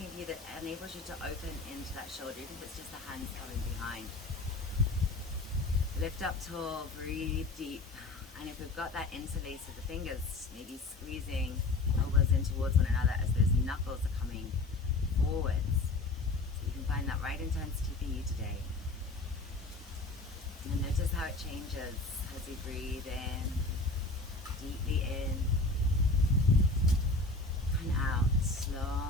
for you that enables you to open into that shoulder, even if it's just the hands coming behind. Lift up tall, breathe deep. And if we've got that interlace of the fingers, maybe squeezing elbows in towards one another as those knuckles are coming forwards. So you can find that right intensity for you today. And then notice how it changes as you breathe in, deeply in, and out,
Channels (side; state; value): right; quieter; 3.2 dB